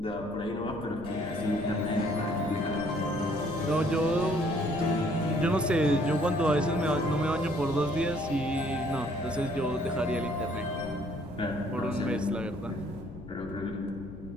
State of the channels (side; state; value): left; noise; rumble, 15 dB below the sound